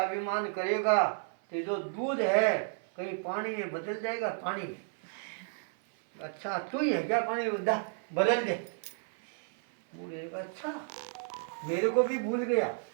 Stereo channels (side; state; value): left; silent; 56 dB below the other